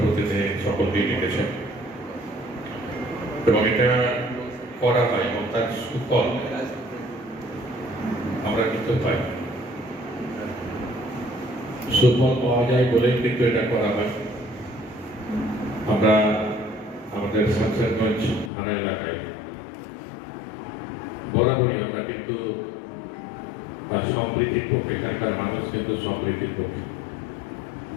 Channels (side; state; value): right; drops out; at 18.5 s